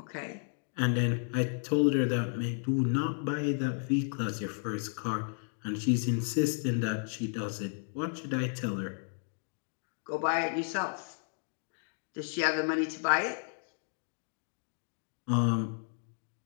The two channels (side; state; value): right; silent; 56 dB below the other